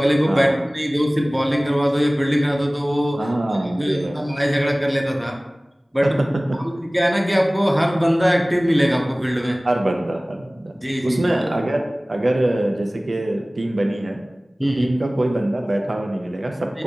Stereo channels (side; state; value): both; normal; correlation 0.98